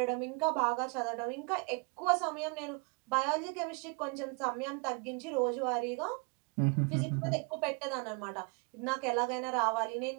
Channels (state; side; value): quieter; left; 33.6 dB